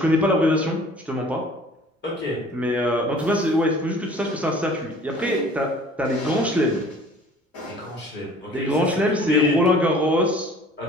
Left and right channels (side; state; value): both; normal; correlation 0.50